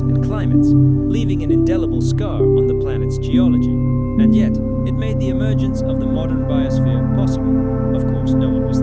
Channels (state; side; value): identical; both; correlation 1.00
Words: and climates, leaving an indelible scar on the planet's geology. And yet, it made the emergence of the modern biosphere possible. Of course, no one was